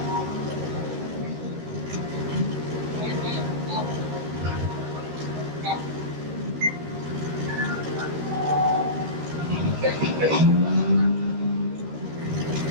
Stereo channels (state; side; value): late; left; 13 ms